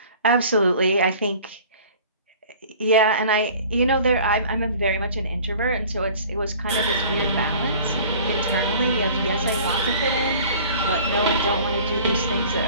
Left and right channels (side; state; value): both; inverted; correlation -0.47